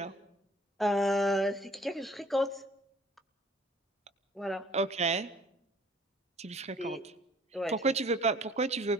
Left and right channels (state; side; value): normal; both; correlation 0.54